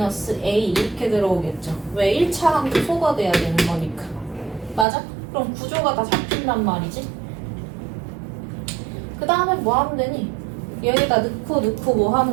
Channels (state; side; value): drops out; left; at 4.9 s